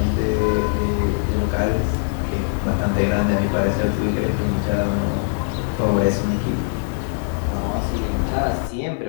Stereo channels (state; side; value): silent; right; digital silence